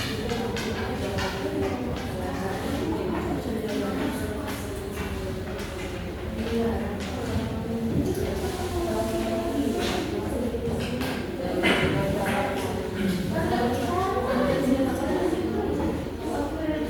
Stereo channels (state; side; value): identical; both; correlation 1.00